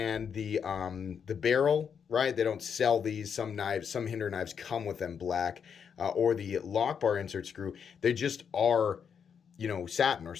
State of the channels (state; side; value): quieter; right; 7.1 dB